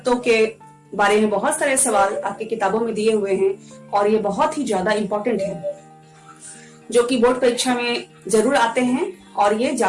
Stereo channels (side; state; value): both; identical; correlation 1.00